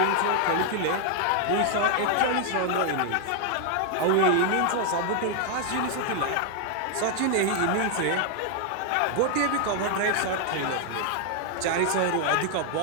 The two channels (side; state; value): both; different; correlation 0.00